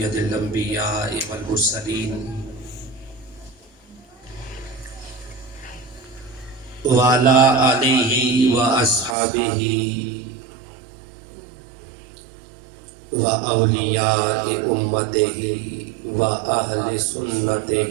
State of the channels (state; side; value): drops out; left; at 9.2 s